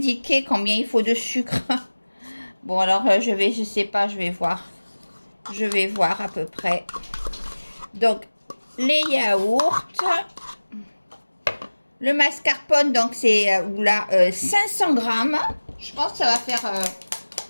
combien il faut de sucre. Bon, alors je sais pas, je vais voir. Je vais voir à peu près. Donc, les yaourts. Le mascarpone, donc c'est 500 grammes. Je pense que ça va faire...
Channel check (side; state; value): both; inverted; correlation -1.00